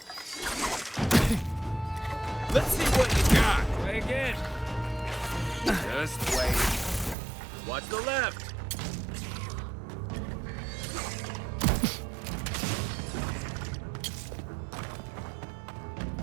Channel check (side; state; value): left; drops out; at 7.2 s